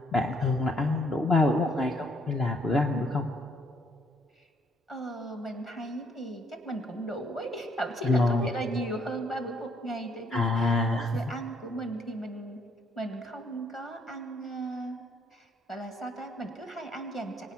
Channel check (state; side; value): normal; both; correlation 0.68